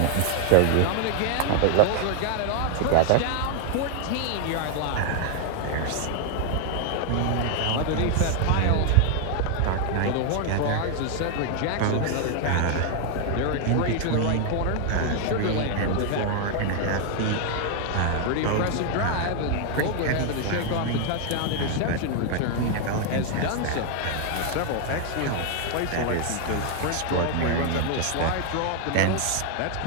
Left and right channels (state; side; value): different; both; correlation 0.00